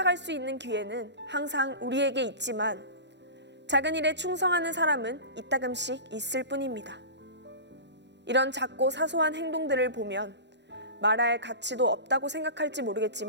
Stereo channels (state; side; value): late; left; 0.51 ms